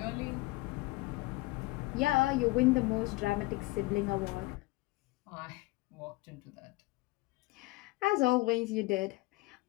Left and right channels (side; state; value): right; quieter; 21.7 dB